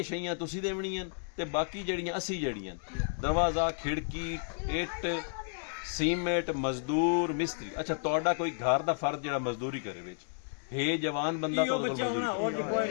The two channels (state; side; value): silent; right; digital silence